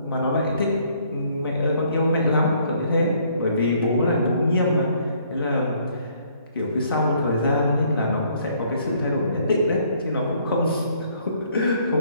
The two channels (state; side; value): inverted; both; correlation -0.64